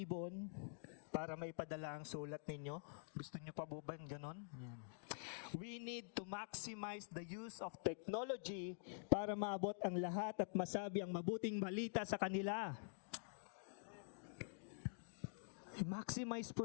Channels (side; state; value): right; silent; digital silence